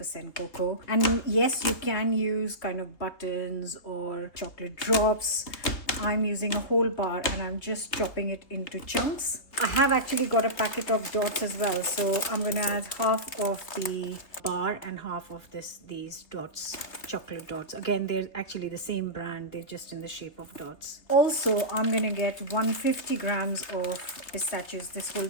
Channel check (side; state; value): right; late; 3.1 ms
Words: cocoa. And yes, you can use kind of buttons or chocolate drops. I'm using a whole bar and I'm just chopping it into chunks. I have actually got a packet of dots as well, so I'm going to add half of the bar and half of these dots, chocolate dots. Again, they're actually the same brand, they're just in the shape of dots. Also, I'm going to get 150 grams of pistachios. This whole